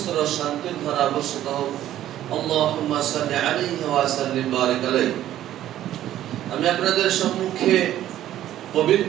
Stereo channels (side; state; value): left; quieter; 12.6 dB